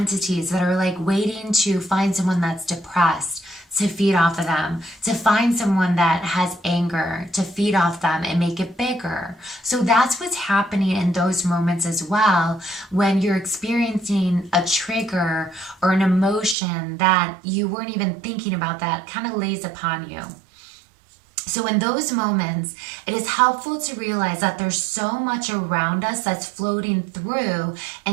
that are like waiting to find someone that's depressed, to feed off of them, to find someone that has anger, to feed off them and make it bigger. So that's what's happening in those moments as well, when you're experiencing a trigger or an emotion that you weren't even thinking about that kind of lays upon you. So in those moments, it is helpful to realize that there's so much around us that's floating through,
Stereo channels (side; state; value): left; drops out; at 16.6 s